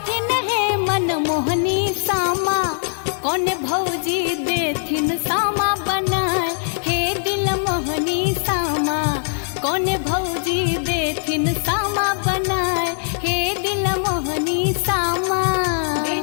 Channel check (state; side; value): silent; right; digital silence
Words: है मन मोहनी सामा कौन भौजी देथिन सामा बनाए हे दिल मोहनी सामा कौन भौजी देथिन सामा बनाए हे दिल मोहनी सामा